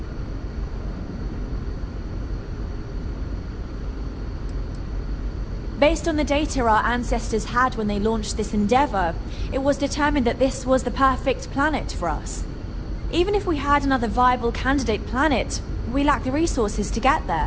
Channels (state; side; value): identical; both; correlation 1.00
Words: Based on the data our ancestors had when they launched this endeavor, it was determined that this was the perfect planet for us. Even if we had another viable candidate planet, we lack the resources to get